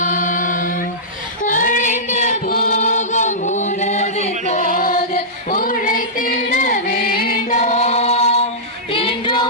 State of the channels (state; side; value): normal; both; correlation -0.15